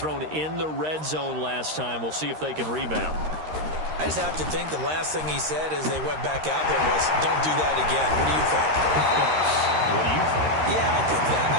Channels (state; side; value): late; left; 13 ms